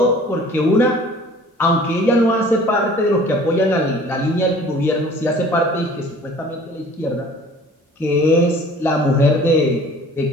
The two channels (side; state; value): both; normal; correlation 0.49